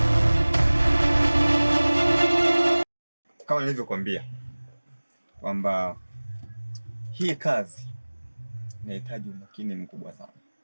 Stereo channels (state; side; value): inverted; both; correlation -1.00